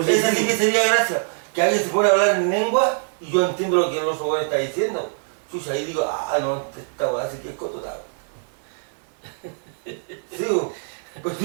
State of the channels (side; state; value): left; silent; digital silence